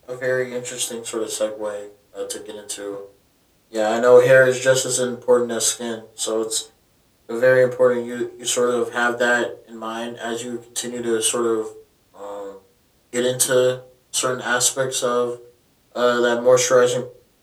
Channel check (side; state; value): both; identical; correlation 1.00